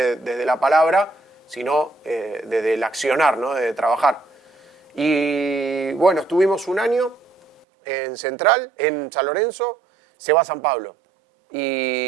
la palabra, sino desde el accionar, ¿no? De trabajar. Y bueno, estuvimos un año en Central, en San Lorenzo. Se va a San Pablo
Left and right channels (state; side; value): drops out; left; at 7.7 s